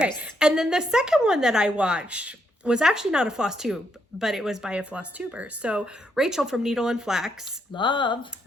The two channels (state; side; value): normal; both; correlation 0.77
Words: And then the second one that I watched was actually not a floss tube, but it was by a floss tuber. So Rachel from Needle and Flax. Love.